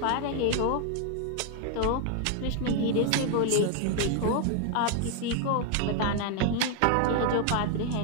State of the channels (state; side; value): different; both; correlation 0.00